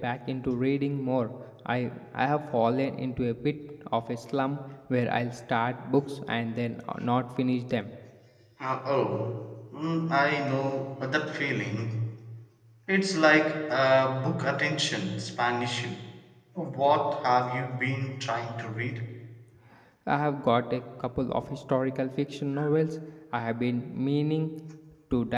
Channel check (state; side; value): identical; both; correlation 1.00